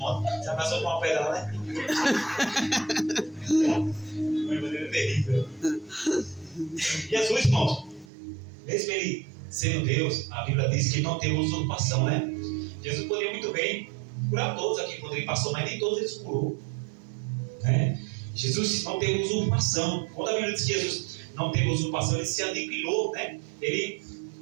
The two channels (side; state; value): left; drops out; at 8.1 s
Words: você passou com uma pedra lá, né? Uma maneira terrível. Jesus, irmãos, mesmo ele sendo Deus, a Bíblia diz que ele não teve usurpação, né? Jesus poderia muito bem curar todos aqui quando ele passou, mas nem todos ele curou, né? Jesus não teve usurpação. Quando a Bíblia diz que Jesus não teve usurpação, ele se aniquilou, né? Ele